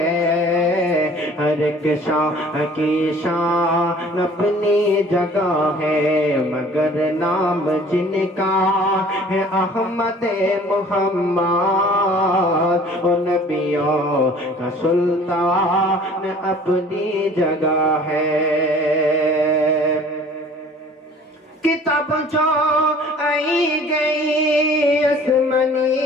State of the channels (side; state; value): both; normal; correlation 0.49